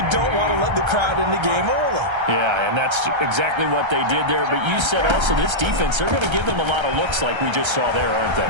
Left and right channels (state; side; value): late; left; 1.3 ms